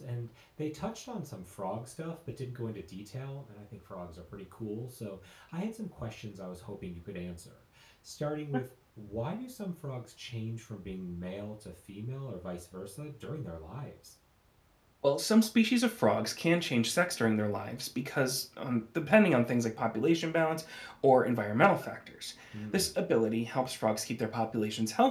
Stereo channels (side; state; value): both; identical; correlation 1.00